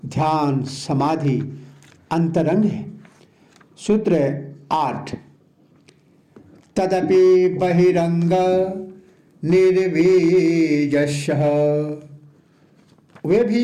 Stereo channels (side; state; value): both; identical; correlation 1.00